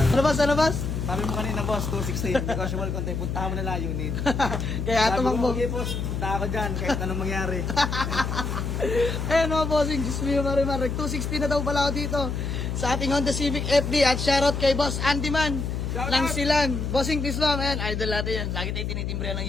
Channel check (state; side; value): noise; left; hum, 3 dB below the sound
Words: Ano boss? Sabi mo kanina boss, 216, negotiable konti, puntahan mo na lang unit. Kaya Sabi mo, tumakbo. okay boss, punta ako dyan, kahit anong mangyari. Ayan mga Bossing, Diyos mio Marimar. 260 na daw pala ako dito sa ating Honda Civic FD at shoutout kay Boss Andy Man ng Silan. Bossing, please ma'am. Ayan, idol natin yan. Lagi tayo tinitimbre ng